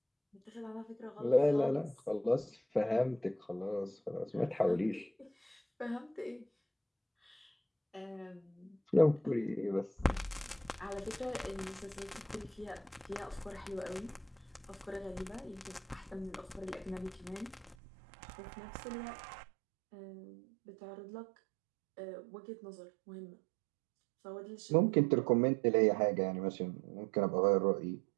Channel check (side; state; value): left; drops out; at 17.8 s